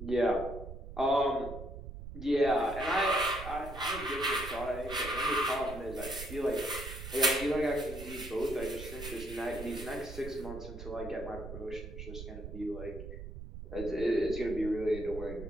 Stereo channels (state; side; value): noise; right; rumble, 10 dB below the sound